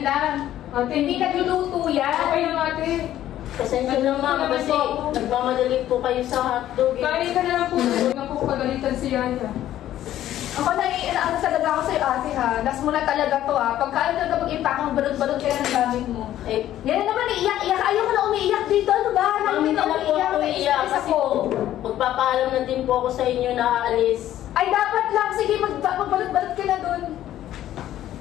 Ate, Hindi nagluluto yan. Okay lang ate. Pasensya na ma'am kasi nagmamadali po kayo sa hotdog eh. Kain ka na lang po. Huwag na po pagalitan si Yaya. Ako naiinaan talaga ako sa'yo ate ha. Last mo na talaga to ha. Pagkaan talaga mag-impakang balot-balot kaya ng gamit mo. Eh, Yan na naman, iiyak-iyak. Ayaw ko na umiiyak dito. Ano ba? ma'am, hindi na po ako iiyak kasi po magpapaalam na din po ako sa inyo na aalis. Ay, dapat lang. Sige, magbalot-balot ka na dun.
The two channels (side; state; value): right; quieter; 12.6 dB